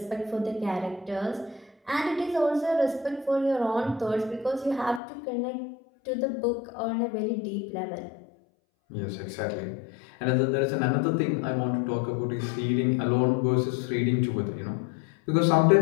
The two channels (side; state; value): right; drops out; at 5.0 s